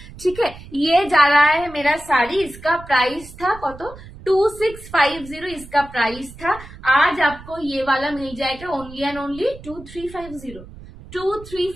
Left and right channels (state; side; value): noise; right; rumble, 17 dB below the sound